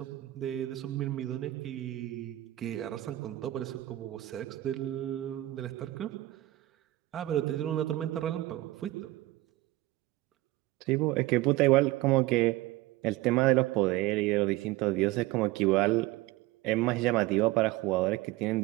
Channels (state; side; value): quieter; left; 17.5 dB